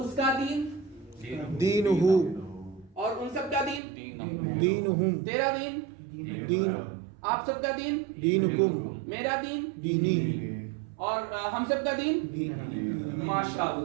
کا دین دین ہو. اور ان سب کا دین دین ہم. تیرا دین دین آپ سب کا دین دین کم. میرا دین دینی. اور ہم سب کا دین.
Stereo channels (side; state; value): left; drops out; at 3.8 s